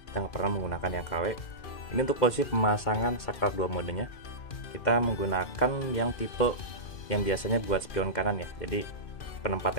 Kita nggak pernah menggunakan yang KW. Ini untuk posisi pemasangan saklar 2 modenya. Kita menggunakan yang tipe yang biasanya buat spion kanan ya. Jadi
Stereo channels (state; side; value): late; right; 2.4 ms